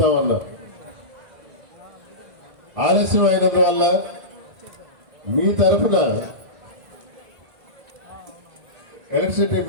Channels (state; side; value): late; left; 2.0 ms